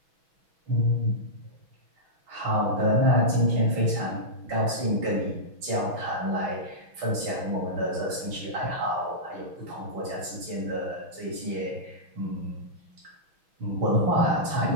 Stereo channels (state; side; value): late; left; 6.1 ms